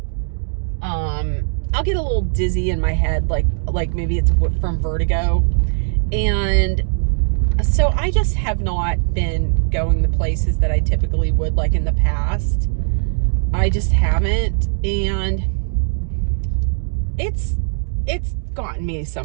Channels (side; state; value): left; silent; 66 dB below the other